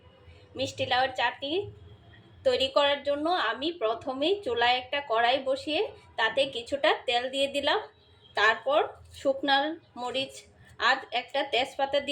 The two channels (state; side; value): identical; both; correlation 1.00